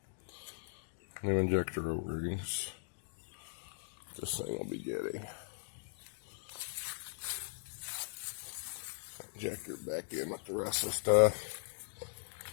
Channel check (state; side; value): silent; right; digital silence